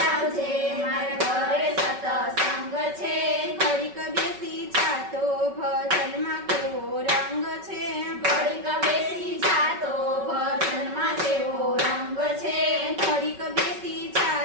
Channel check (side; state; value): left; late; 5.3 ms